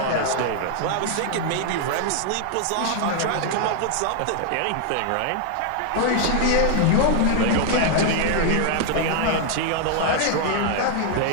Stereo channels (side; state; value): both; different; correlation 0.00